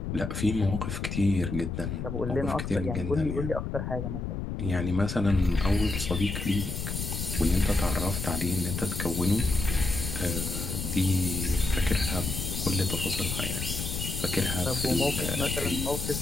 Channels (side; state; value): left; noise; rumble, 4 dB below the sound